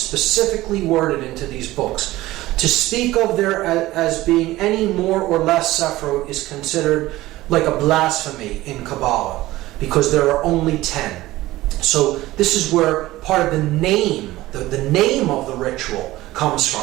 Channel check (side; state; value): left; quieter; 17.3 dB